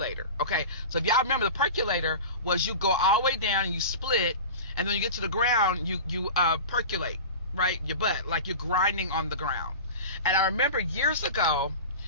Okay, so if y'all remember, the percolator was you go all the way down and you split, and then you get to the ground, you percolate, right? Your butt, like you're grinding on the ground. And I remember years ago,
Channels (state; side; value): inverted; both; correlation -0.32